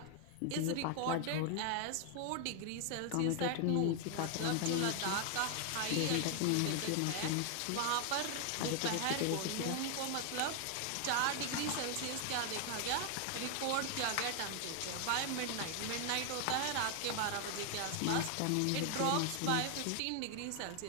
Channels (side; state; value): both; different; correlation 0.00